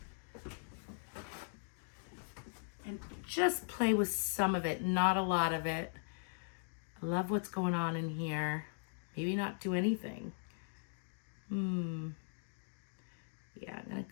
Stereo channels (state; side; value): silent; right; digital silence